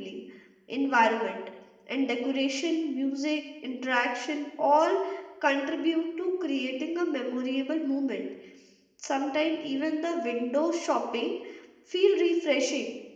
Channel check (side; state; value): both; identical; correlation 1.00